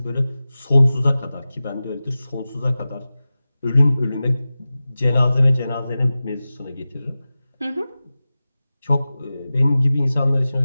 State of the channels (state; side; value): inverted; both; correlation -0.96